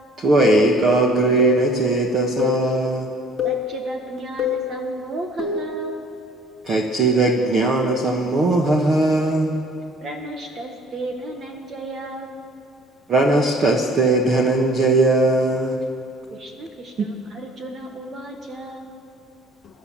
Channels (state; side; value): normal; both; correlation 0.53